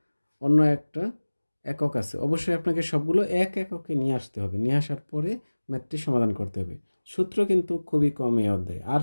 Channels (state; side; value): inverted; both; correlation -1.00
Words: অন্য একটা একক আছে। অবশ্যই আপনাকে সবগুলো এক এককে নিয়ে আসতে হবে, নিয়ে আসার পরে ম্যাথটি সমাধান করতে হবে। সূত্র কিন্তু খুবই কম এই অধ্যায়ে, আর